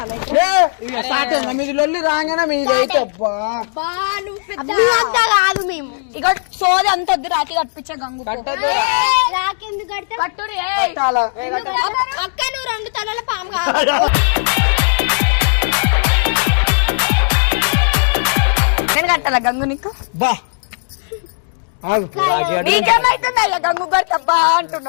మీది లొల్లి రాగానే మీది అయితే కాదు మేము ఇక సోది అంత వద్దు రాకి కట్టించే గంగు రాకెందుకు కడతా కట్టురి అక్క నువ్వు 2 తలల పాము నేను కట్టాలా గంగు నీకు? బా నీకేమైతుందా గంగు కట్టబ్బా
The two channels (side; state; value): right; silent; digital silence